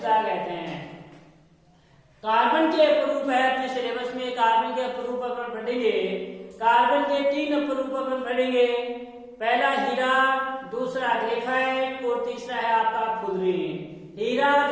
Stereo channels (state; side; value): identical; both; correlation 1.00